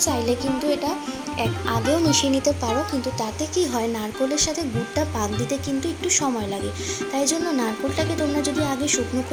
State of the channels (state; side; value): identical; both; correlation 1.00